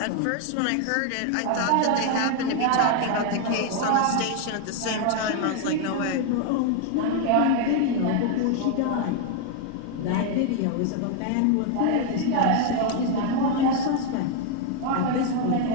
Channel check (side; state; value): both; different; correlation 0.01